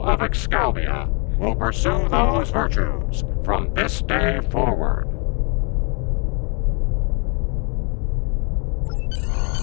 of Excalibur will pursue those virtues from this day forward.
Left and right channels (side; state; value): right; quieter; 36.4 dB